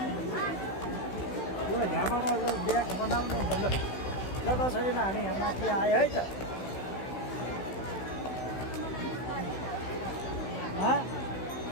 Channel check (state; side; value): late; right; 16 ms